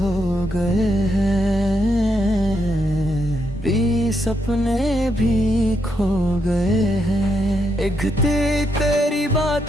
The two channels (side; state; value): both; normal; correlation 0.79